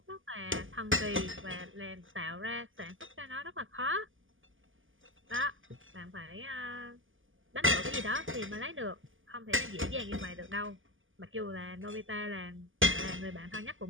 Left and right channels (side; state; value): left; late; 0.58 ms